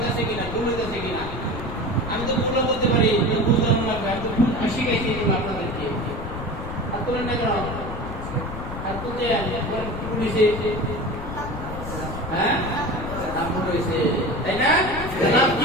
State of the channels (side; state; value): left; noise; rumble, 8 dB below the sound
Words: আমি তো ভুলও বলতে পারি বুঝলাম না আমি তো শিখাইছি আপনাদেরকে আর তোলেন না কেন আর তুলতে পুলিশে হ্যাঁ নাম রয়েছে তাই না নাম কি